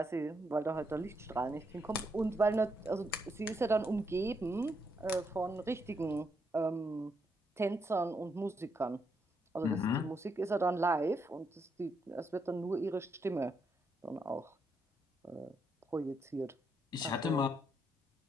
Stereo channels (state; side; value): normal; both; correlation 0.78